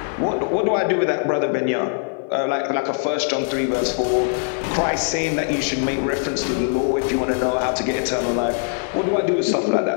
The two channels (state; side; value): silent; right; 62 dB below the other